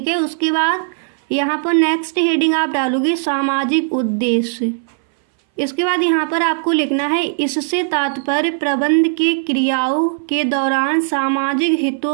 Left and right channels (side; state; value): left; silent; 61 dB below the other